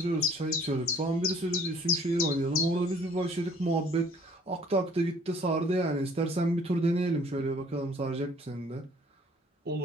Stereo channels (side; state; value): both; normal; correlation 0.56